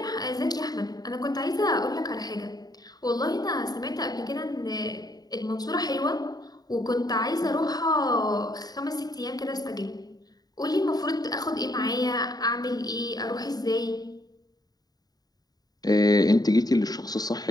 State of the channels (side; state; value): right; late; 0.19 ms